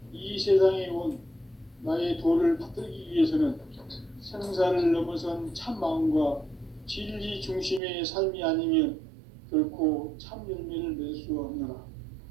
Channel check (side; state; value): left; drops out; at 7.8 s